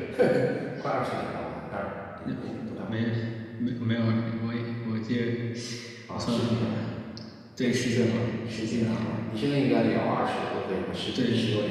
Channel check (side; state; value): both; identical; correlation 1.00